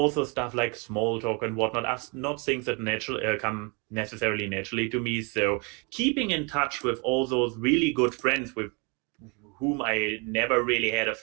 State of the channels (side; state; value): left; quieter; 32.5 dB